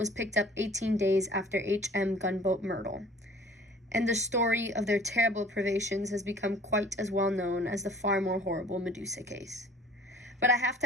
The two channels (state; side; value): normal; both; correlation 0.50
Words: picked up 18 days after H.M. gunboat Myrtle, and the story of their terrible privations has become quite as well known as the far more horrible Medusa case. But I have